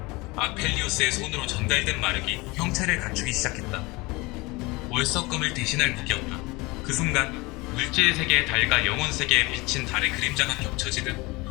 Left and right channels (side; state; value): right; quieter; 24.0 dB